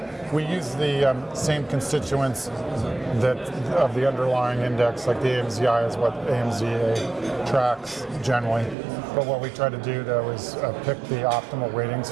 We use the same constituents of the underlying index, like the AMZI is what AMZA tracks generally. But what we try to do, though, is pick the optimal weightings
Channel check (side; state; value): left; drops out; at 8.8 s